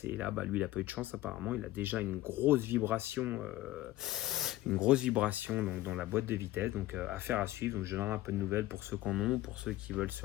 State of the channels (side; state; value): right; quieter; 16.0 dB